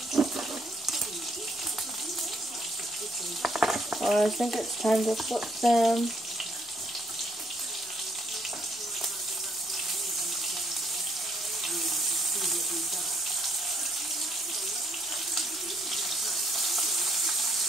I think it's time to flip them.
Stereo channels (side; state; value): both; normal; correlation 0.70